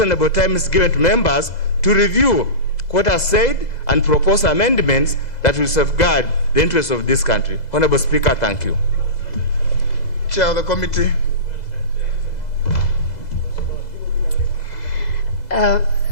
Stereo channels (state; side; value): late; right; 2.0 ms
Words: time is given to members to review what is said and propose amendments that will safeguard the interests of this country. Honorable Speaker, thank you. Chair of the committee.